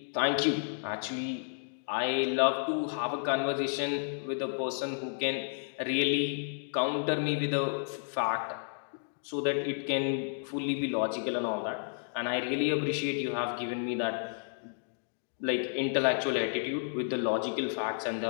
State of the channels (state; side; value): silent; right; digital silence